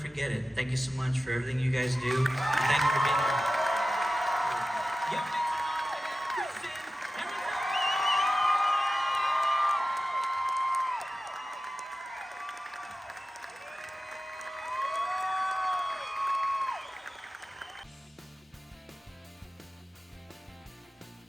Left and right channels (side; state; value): both; normal; correlation 0.94